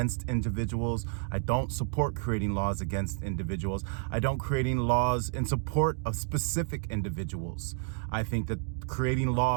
individuals. I don't support creating laws against individuals. I don't creating laws in support of specific individuals. I think that creating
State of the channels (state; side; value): silent; left; 58 dB below the other